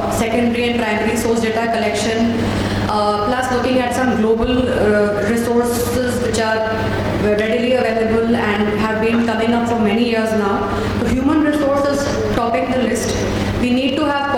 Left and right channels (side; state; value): both; identical; correlation 1.00